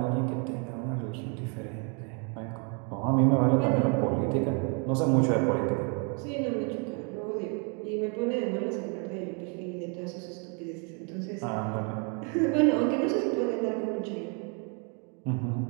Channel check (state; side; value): quieter; left; 37.0 dB